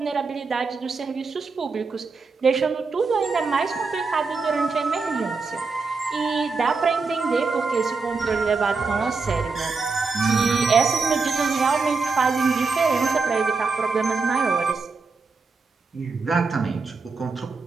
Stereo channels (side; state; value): left; quieter; 4.4 dB